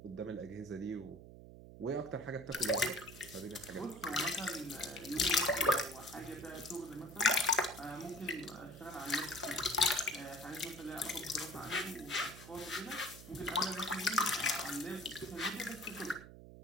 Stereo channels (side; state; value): right; noise; hum, 15 dB below the sound